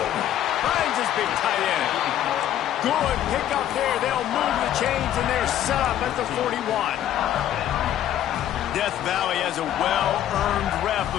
Finds his big tight end. Good pick up there. They'll move the chains, and they're set up at the 41. Death Valley has a well-earned rep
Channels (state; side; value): quieter; right; 11.5 dB